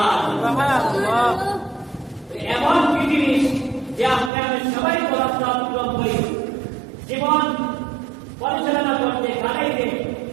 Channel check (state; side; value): drops out; left; at 4.3 s